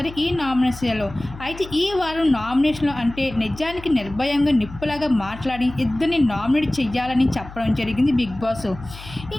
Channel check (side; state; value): left; noise; hum, 15 dB below the sound